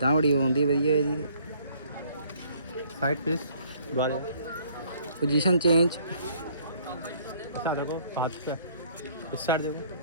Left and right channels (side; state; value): both; inverted; correlation -0.60